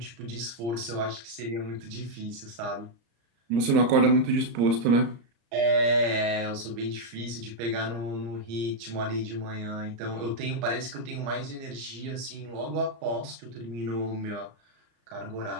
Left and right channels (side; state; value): left; late; 34 ms